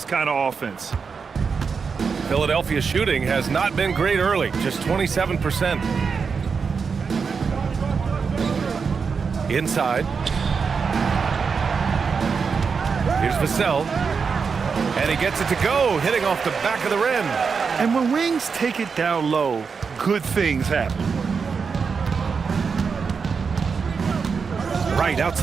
kind of offense. Philadelphia shooting has not been great early, just 27%. Inside. Here's Vassell. And he gets it to go, hitting off the back of the rim. And when wings take it down low, good things happen. Right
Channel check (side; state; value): left; quieter; 5.6 dB